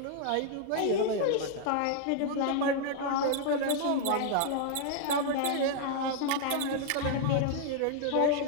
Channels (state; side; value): different; both; correlation 0.00